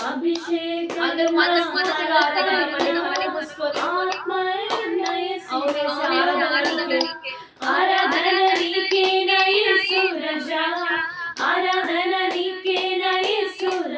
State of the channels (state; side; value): identical; both; correlation 1.00